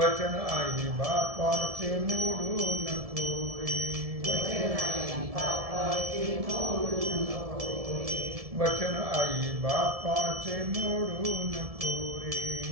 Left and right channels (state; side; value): late; left; 1.7 ms